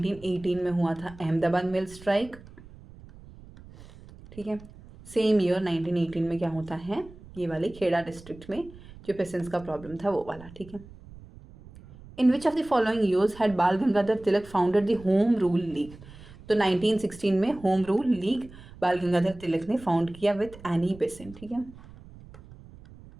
में हुआ था अहमदाबाद मिल स्ट्राइक, ठीक है। सेम ईयर 1918 में क्या होता है? ये वाले खेड़ा डिस्ट्रिक्ट में जो पेसेंट्स का प्रॉब्लम था वो वाला, ठीक है। In which of the following years had Bal Gangadhar Tilak founded the home rule league? तो 1916 में होम रूल लीग बाल गंगाधर तिलक ने फाउंड किया विथ एनी बेसेंट, ठीक है।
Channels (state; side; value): noise; right; rumble, 19 dB below the sound